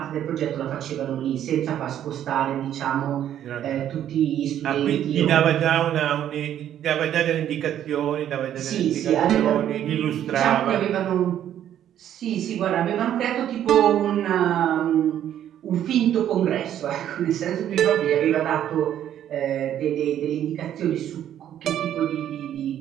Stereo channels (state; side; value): quieter; left; 10.8 dB